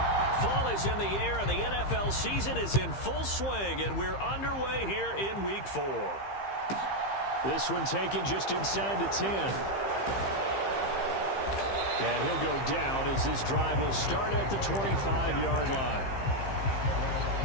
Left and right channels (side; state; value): right; late; 15 ms